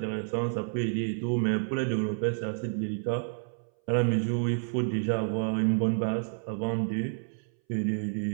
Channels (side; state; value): left; silent; 58 dB below the other